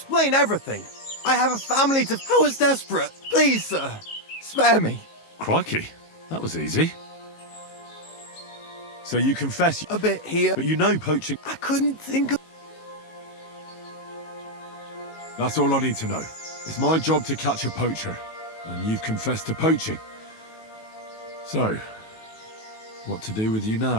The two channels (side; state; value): right; late; 18 ms